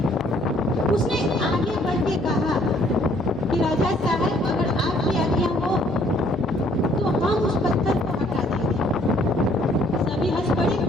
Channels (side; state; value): both; normal; correlation 0.63